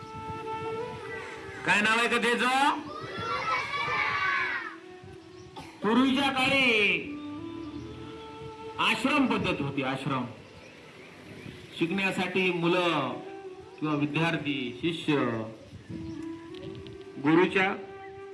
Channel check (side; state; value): both; identical; correlation 1.00